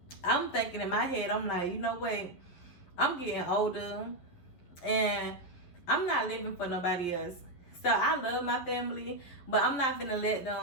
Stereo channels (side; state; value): right; late; 11 ms